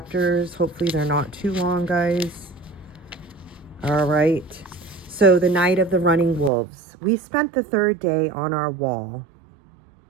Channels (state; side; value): drops out; left; at 6.5 s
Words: Hopefully they're not too long, guys. All right. So the night of the running wolves. We spent the 3rd day on our wall,